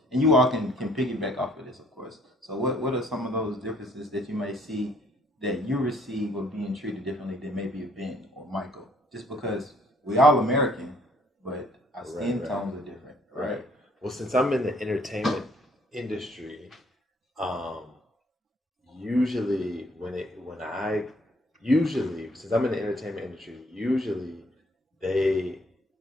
And you all can piggyback off of this, of course. So what are some of those differences that you may see that you receive of being treated differently than maybe a Ben or Michael? Just because we all American, but our skin tones are different, right? Well, since I'm in the entertainment industry, usually since I'm in the entertainment industry, usually they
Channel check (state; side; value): normal; both; correlation 0.63